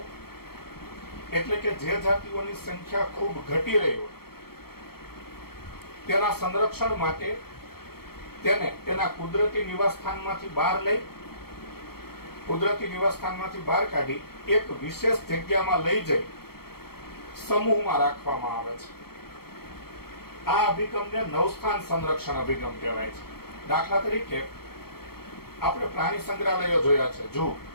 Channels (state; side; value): late; right; 0.95 ms